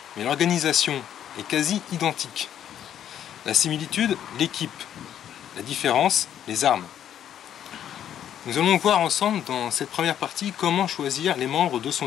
mais l'organisation est quasi identique. La similitude, l'équipe. La différence, les armes. Nous allons voir ensemble dans cette première partie comment choisir les membres de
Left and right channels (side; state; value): right; quieter; 10.2 dB